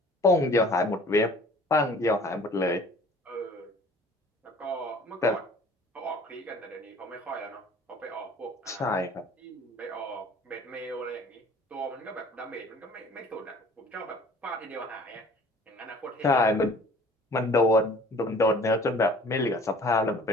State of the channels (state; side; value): normal; both; correlation 0.50